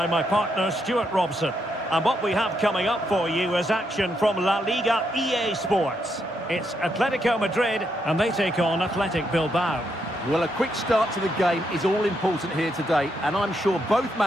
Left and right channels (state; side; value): normal; both; correlation 0.79